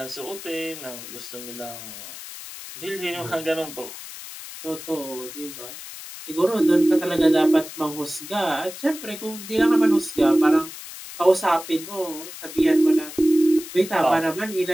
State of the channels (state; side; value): noise; left; hiss, 13 dB below the sound